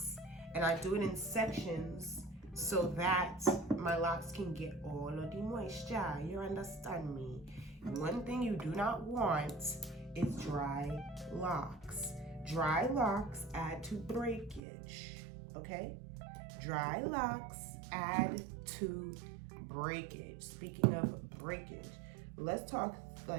And I do it in sections so that my locks can get all of the moisture. You understand me? One thing you do not want is dry locks. Dry locks add to breakage, okay? Dry locks add to breakage. Speaking of breakage, let's talk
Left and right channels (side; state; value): left; drops out; at 14.6 s